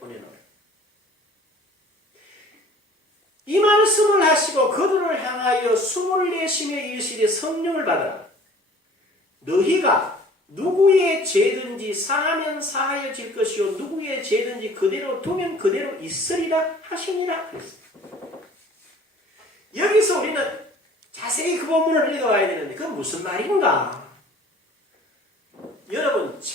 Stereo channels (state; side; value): normal; both; correlation 0.50